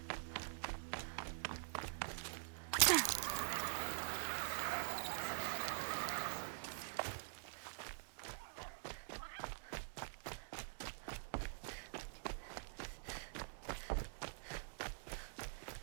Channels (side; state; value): left; silent; digital silence